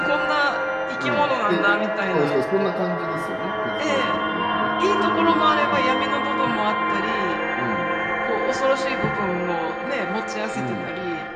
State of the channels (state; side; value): identical; both; correlation 1.00